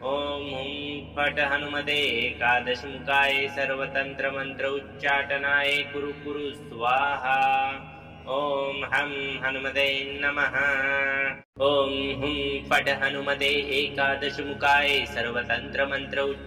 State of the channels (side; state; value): both; identical; correlation 1.00